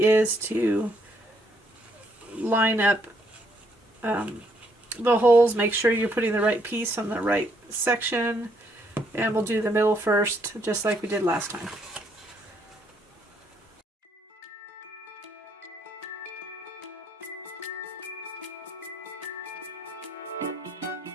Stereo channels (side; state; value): both; normal; correlation 0.71